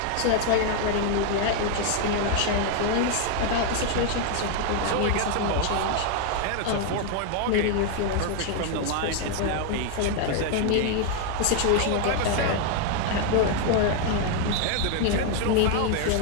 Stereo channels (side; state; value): both; different; correlation 0.00